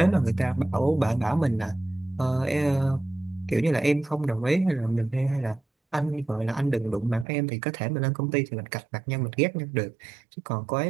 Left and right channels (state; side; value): drops out; left; at 7.2 s